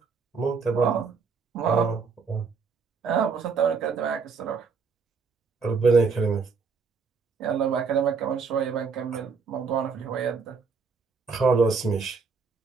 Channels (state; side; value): quieter; left; 5.2 dB